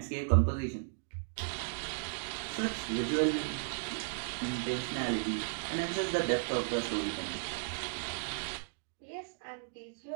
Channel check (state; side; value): silent; left; digital silence